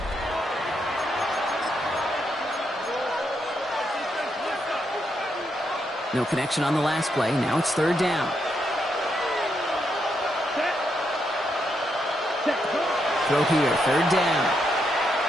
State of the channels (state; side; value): normal; both; correlation 0.80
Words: No connection on the last play. Now it's 3rd down. Throw here, 3rd down.